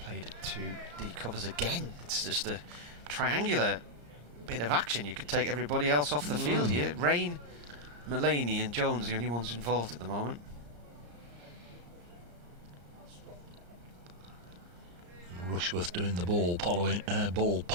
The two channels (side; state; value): left; late; 34 ms